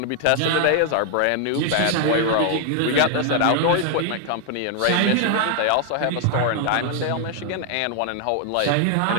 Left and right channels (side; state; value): both; different; correlation 0.00